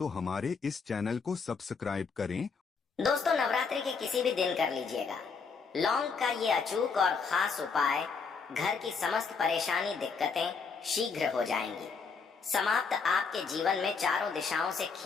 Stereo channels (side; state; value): right; quieter; 5.3 dB